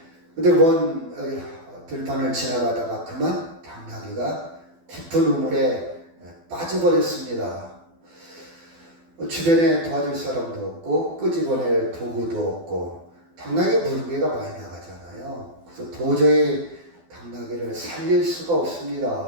근데 먼 들판을 지나가다가 그만 당나귀가 깊은 우물에 빠져버렸습니다. 주변에 도와줄 사람도 없고 끄집어낼 도구도 없고 당나귀 무게가 많이 나가잖아요. 그래서 도저히 당나귀를 살릴 수가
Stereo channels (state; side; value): late; left; 12 ms